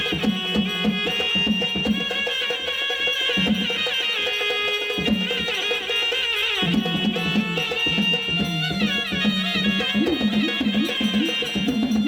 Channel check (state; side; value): identical; both; correlation 1.00